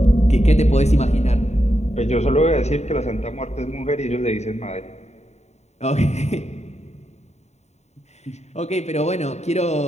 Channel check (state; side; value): late; right; 0.32 ms